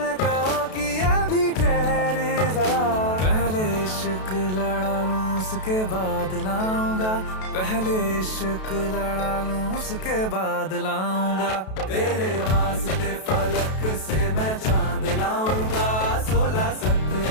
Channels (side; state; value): right; late; 32 ms